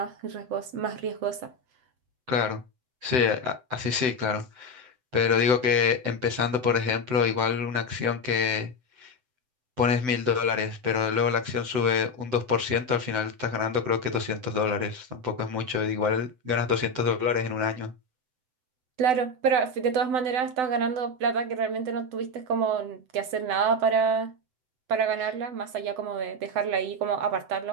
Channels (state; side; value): late; left; 7.9 ms